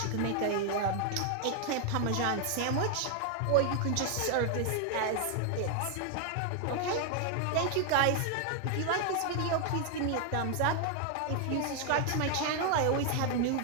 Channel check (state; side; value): different; both; correlation 0.00